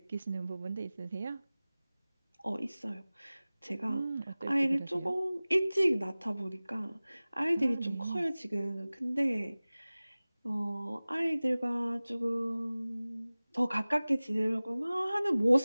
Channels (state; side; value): inverted; both; correlation -0.99